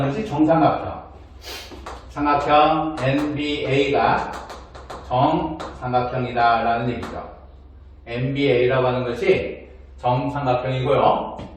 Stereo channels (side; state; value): both; identical; correlation 1.00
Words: 것이 정삼각형. 삼각형 NBA가 정삼각형이다 라는 얘기죠. NBA라고 하는 것이 정삼각형이고요.